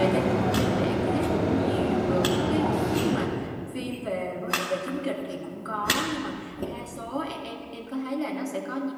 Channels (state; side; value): identical; both; correlation 1.00